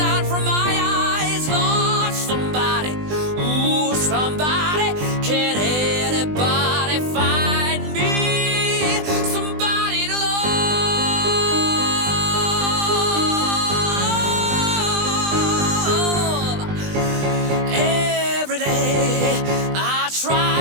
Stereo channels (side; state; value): left; late; 20 ms